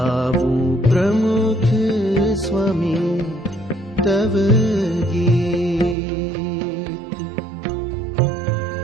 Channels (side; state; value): left; drops out; at 6.0 s